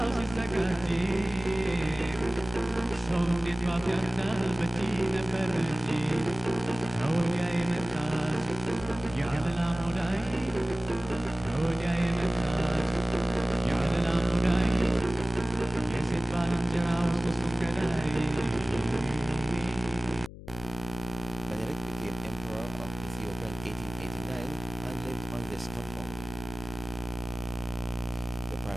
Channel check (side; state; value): left; noise; hum, 14 dB below the sound